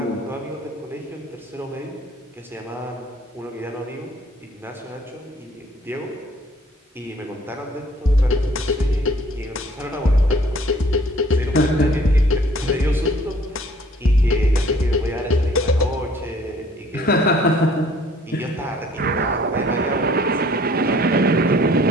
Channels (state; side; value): normal; both; correlation 0.56